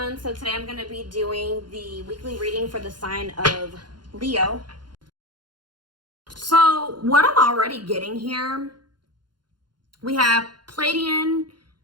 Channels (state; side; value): late; left; 0.71 ms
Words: so today I'm going to be doing the weekly reading for the sign of Leo. So what I'm already getting here, we have Pleiadian,